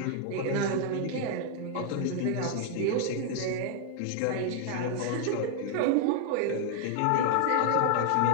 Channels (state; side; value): different; both; correlation 0.00